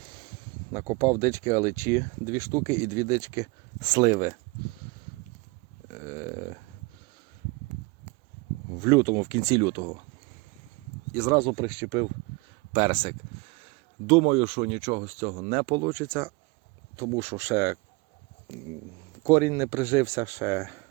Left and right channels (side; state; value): left; quieter; 26.9 dB